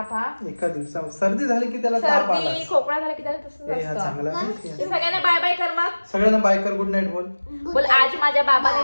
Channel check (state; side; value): inverted; both; correlation -1.00